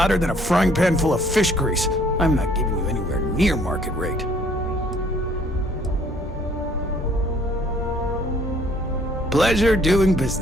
than a frying pan full of fish grease. I'm not giving you anywhere near market rate. Pleasure doing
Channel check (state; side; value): normal; both; correlation 0.60